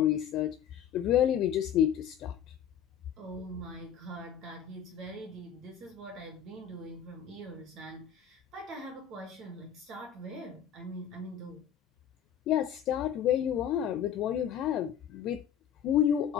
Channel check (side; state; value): right; quieter; 9.2 dB